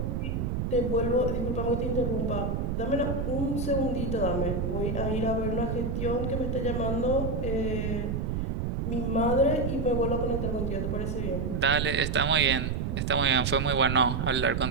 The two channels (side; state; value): right; noise; rumble, 1 dB below the sound